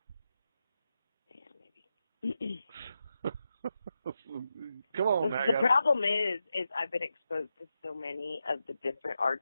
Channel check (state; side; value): inverted; both; correlation -0.88